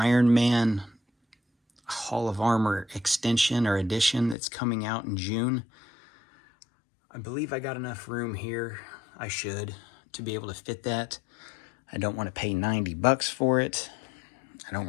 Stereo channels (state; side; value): drops out; right; at 4.4 s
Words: Man Hall of Armor extension or edition that's coming out in June, I believe I got enough room here, I should, to be able to fit that. I don't want to pay 90 bucks for it. I don't